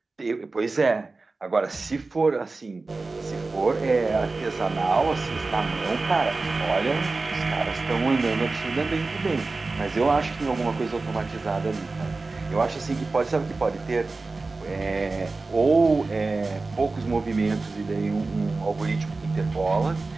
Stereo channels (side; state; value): left; quieter; 3.6 dB